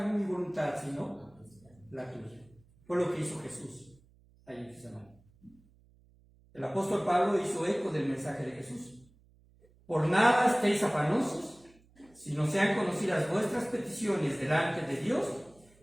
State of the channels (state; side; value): noise; right; hum, 29 dB below the sound